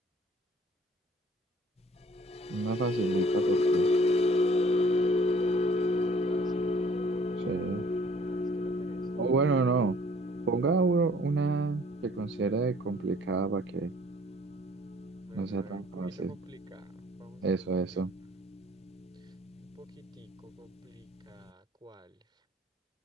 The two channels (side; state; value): both; normal; correlation 0.55